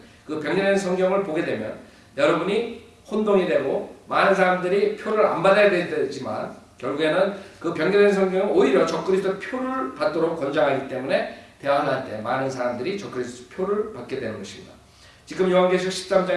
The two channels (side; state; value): both; identical; correlation 1.00